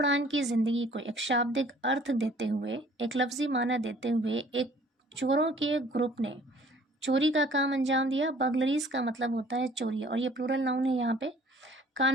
की जिंदगी को एक शाब्दिक अर्थ देते हुए, एक लफ्जी माना देते हुए एक चोरों के ग्रुप ने चोरी का काम अंजाम दिया. बर्गलरीज का मतलब होता है चोरी और ये प्लूरल नाउन है. यहाँ पे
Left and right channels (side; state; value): both; normal; correlation 0.55